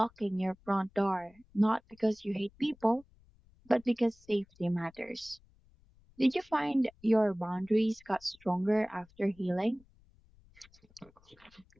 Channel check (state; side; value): noise; left; rumble, 29 dB below the sound